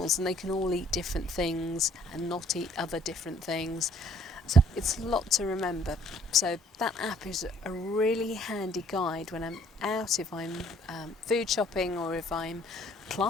and they can all eat different things and not eat other different things. So it's a lot to remember. So that app is a really handy guide when I'm out, if I'm food shopping or if I'm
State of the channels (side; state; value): both; normal; correlation 0.60